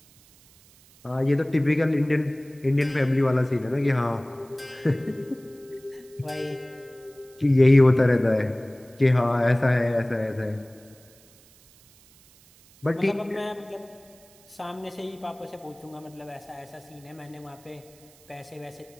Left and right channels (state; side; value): noise; right; hiss, 27 dB below the sound